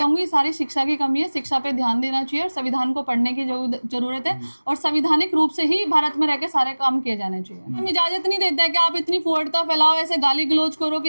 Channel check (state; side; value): inverted; both; correlation -1.00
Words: सारी शिक्षा की कमी है, शिक्षा पे ध्यान देना चाहिए और संविधान को पढ़ने की जरूरत है और संवैधानिक रूप से ही भारत में रह के सारे काम किए जाने चाहिए। हम इजाजत नहीं देते कि आप इतनी फुहड़ता फैलाओ, ऐसे गाली गलौज करो